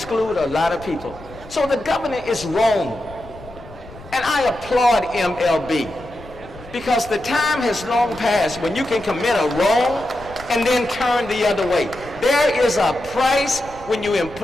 a lot of people. So the governor is wrong. And I applaud MLB because the time has long passed when you can commit a wrong and then turn the other way. There is a price when you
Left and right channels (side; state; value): left; noise; rumble, 18 dB below the sound